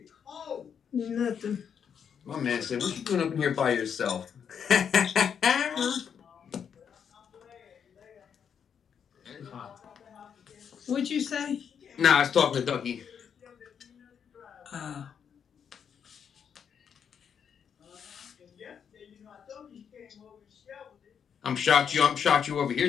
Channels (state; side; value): quieter; right; 7.6 dB